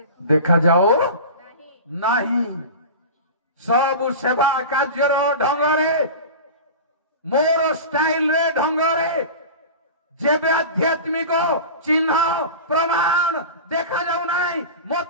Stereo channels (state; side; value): inverted; both; correlation -0.31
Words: ଦେଖାଯାଉ ନାହିଁ। ସବୁ ସେବା କାର୍ଯ୍ୟର ଢଙ୍ଗରେ, ମୋର ଷ୍ଟାଇଲରେ, ଢଙ୍ଗରେ, ଯେବେ ଆଧ୍ୟାତ୍ମିକ ଚିହ୍ନ ପ୍ରମାଣ ଦେଖାଯାଉ ନାହିଁ,